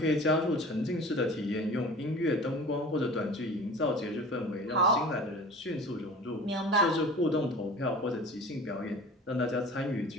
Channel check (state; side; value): normal; both; correlation 0.40